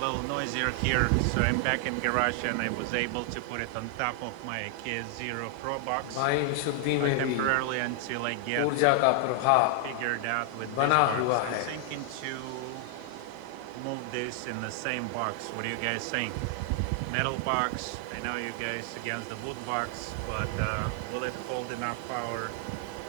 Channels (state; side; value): different; both; correlation 0.00